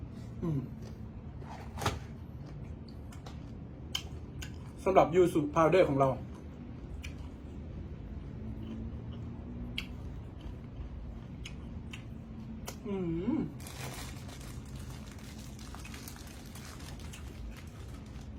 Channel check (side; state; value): both; identical; correlation 1.00